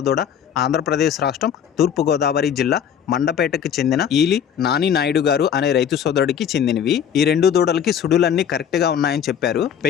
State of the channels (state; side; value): quieter; right; 8.5 dB